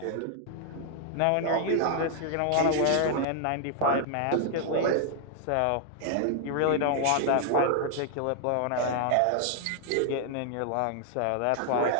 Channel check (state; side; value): different; both; correlation 0.00